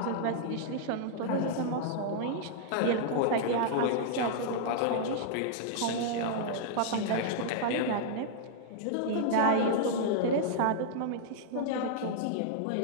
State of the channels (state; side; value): different; both; correlation -0.01